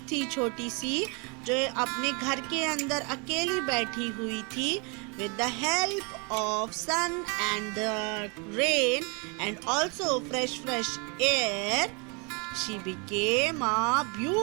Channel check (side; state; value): left; quieter; 32.9 dB